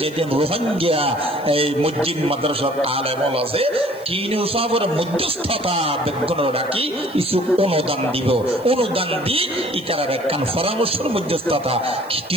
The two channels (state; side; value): noise; right; hiss, 25 dB below the sound